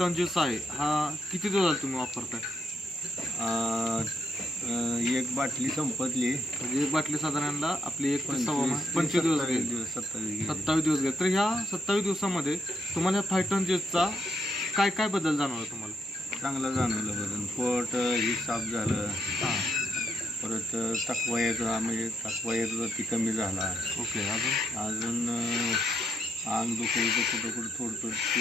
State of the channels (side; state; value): both; normal; correlation 0.76